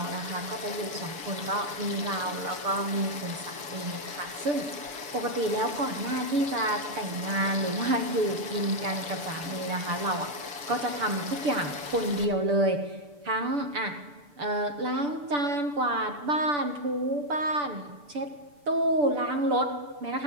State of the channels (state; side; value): late; left; 6.9 ms